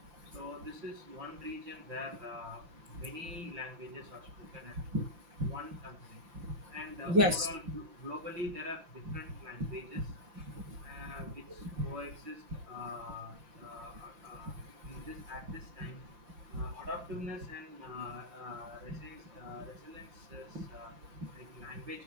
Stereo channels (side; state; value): left; late; 5.9 ms